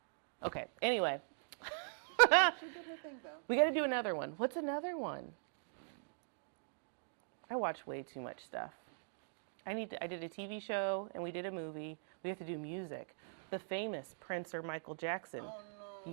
Okay. Anyway, She did her thing though. we got to do another one. What's another one? I watch way too much stuff. I did a TV show and we did a movie. We have to do music. Oh. The famous Prince or Michael Jackson. Oh no.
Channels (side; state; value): left; silent; digital silence